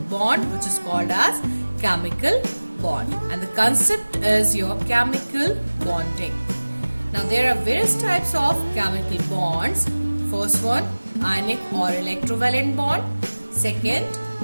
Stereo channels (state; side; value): inverted; both; correlation -1.00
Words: bond, which is called as chemical bond. And the concept is your chemical bonding. Now there are various types of chemical bonds. First one, ionic or electrovalent bond. Second,